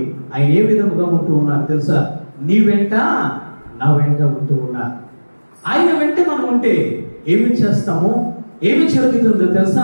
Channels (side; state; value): both; inverted; correlation -1.00